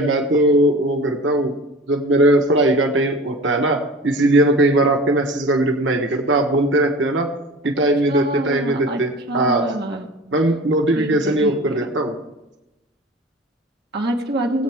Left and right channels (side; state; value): both; normal; correlation 0.38